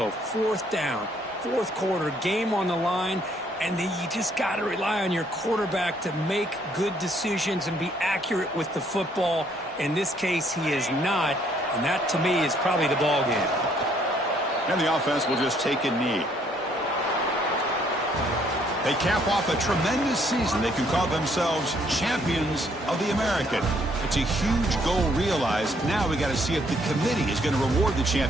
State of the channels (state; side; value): normal; both; correlation 0.66